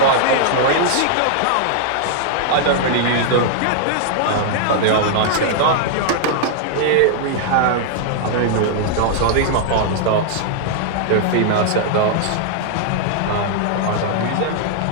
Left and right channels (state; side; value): different; both; correlation -0.01